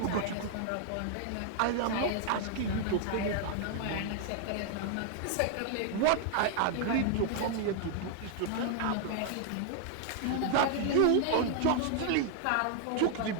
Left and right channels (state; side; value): different; both; correlation 0.00